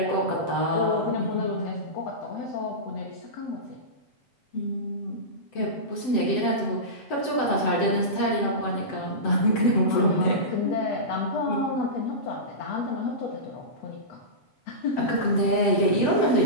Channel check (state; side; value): late; right; 7.7 ms